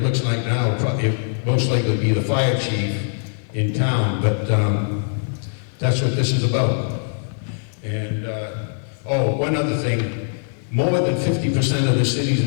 looks like now it most likely be the fire chief in town, but that's what this is about. And, one other thing, more than 50% of the cities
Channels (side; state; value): right; silent; 65 dB below the other